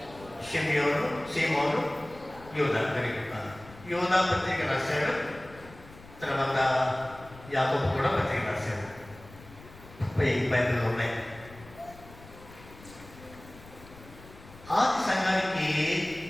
షిమ్యోను, సీమోను, యూదా. యూదా పత్రిక రాశాడు. తర్వాత యాకోబు కూడా పత్రిక రాశాడు. బైబిల్లో ఉన్నాయి. ఆది సంఘానికి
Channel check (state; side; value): noise; left; rumble, 20 dB below the sound